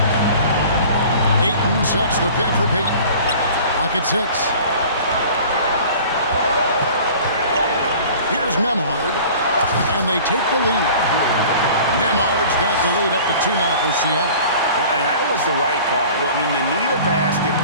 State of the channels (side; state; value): both; inverted; correlation -0.45